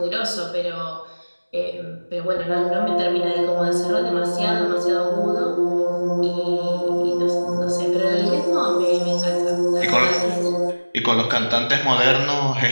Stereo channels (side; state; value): both; inverted; correlation -1.00